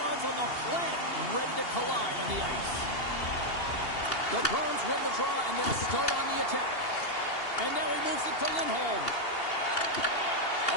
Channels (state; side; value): late; right; 2.8 ms